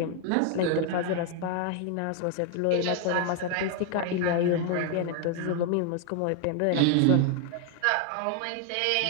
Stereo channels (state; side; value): different; both; correlation 0.00